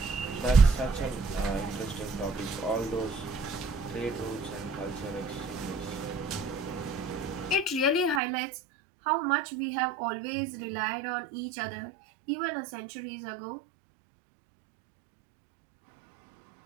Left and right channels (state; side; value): drops out; left; at 8.2 s